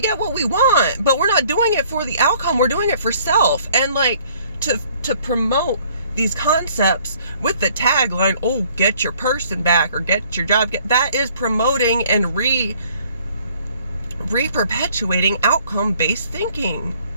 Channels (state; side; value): inverted; both; correlation -0.59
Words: get what we want, but we're not doing it for the outcome. We're doing it for self. And like to promote these concepts with the tagline, oh, get your person back, or get your job. That is promoting and re-perpetuating outcome-based thinking.